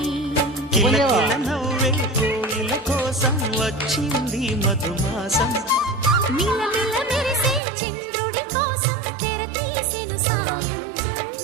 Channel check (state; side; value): drops out; left; at 7.6 s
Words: కిలకిల నవ్వే కోయిల కోసం వచ్చింది మధుమాసం. మిలమిల మెరిసే చంద్రుడి కోసం తెర తీసెను సాయంత్రం.